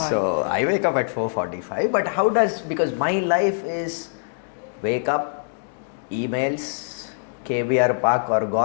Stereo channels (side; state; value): right; silent; digital silence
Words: So I wake up at 4:45. But how does, because my life is wake up, emails, KBR park or